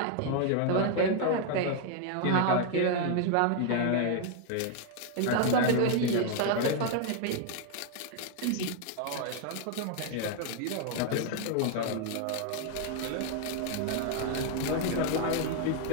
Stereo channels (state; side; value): different; both; correlation 0.00